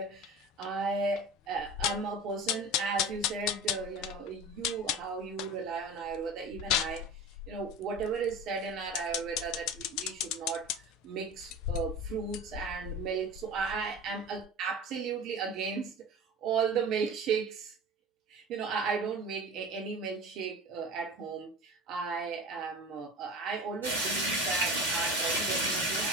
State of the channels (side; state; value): both; normal; correlation 0.34